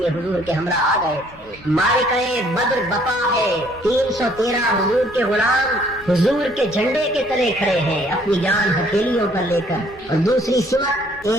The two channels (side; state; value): both; normal; correlation 0.62